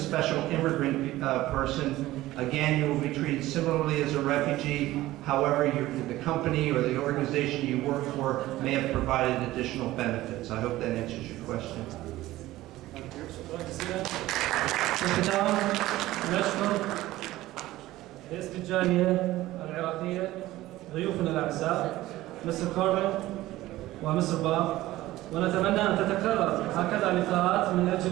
immigrant person, again, you will be treated similarly as a refugee. However, the company or the organization you work for may have provided additional benefits. I hope that answers your question. في الختام نشكر باسم الجالية العراقية ضيوفنا الأعزاء مستر كاربن ومستر باب، ونتمنى أن تتكرر هكذا لقاءات من أجل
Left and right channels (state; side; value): quieter; left; 16.5 dB